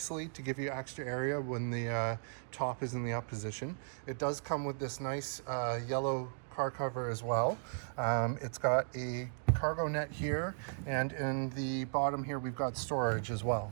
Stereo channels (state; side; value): silent; left; digital silence